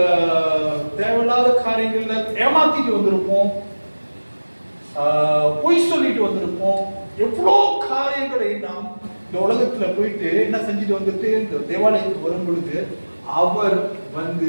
தேவையில்லாத காரியங்கள்ல ஏமாத்திட்டு வந்திருப்போம், பொய் சொல்லிட்டு வந்திருப்போம். எவ்வளோ காரியங்களை நாம் இந்த உலகத்துல போயிட்டு என்ன செஞ்சுட்டு வந்துட்டு இந்த தேவாலயத்துக்கு வரும் பொழுது அவர் வந்து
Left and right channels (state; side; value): inverted; both; correlation -1.00